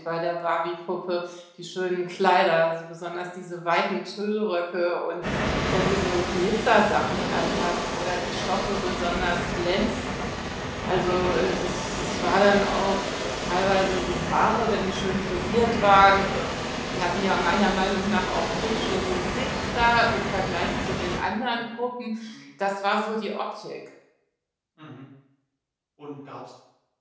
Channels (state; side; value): identical; both; correlation 1.00